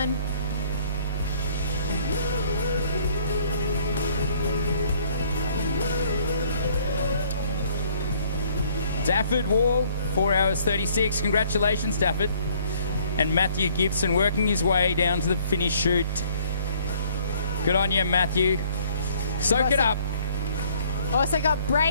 Dafford Wall, 4 hours 36. Congratulations, Dafford. And Matthew Gibson working his way down to the finish chute. Good on you, Matthew. Soak it up. Also got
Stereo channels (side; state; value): both; inverted; correlation -0.60